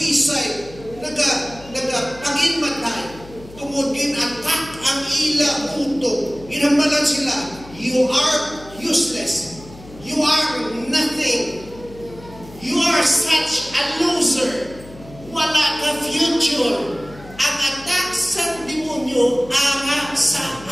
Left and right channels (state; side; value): noise; left; hum, 19 dB below the sound